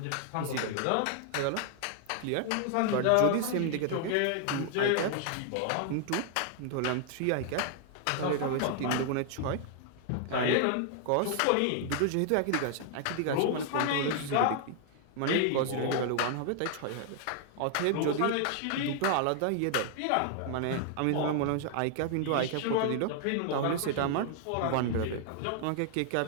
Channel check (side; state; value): both; different; correlation 0.00